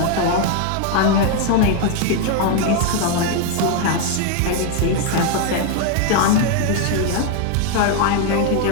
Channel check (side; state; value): both; different; correlation 0.01